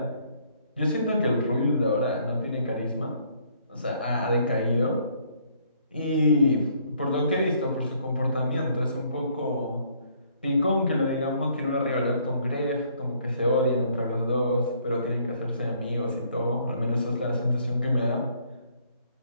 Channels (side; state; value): both; inverted; correlation -0.65